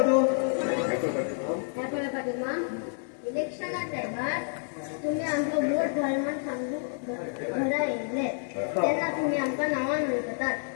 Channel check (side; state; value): right; silent; digital silence